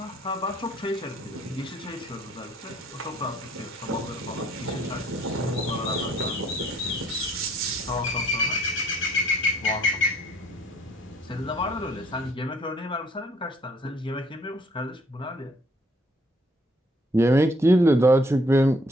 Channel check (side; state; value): both; normal; correlation 0.62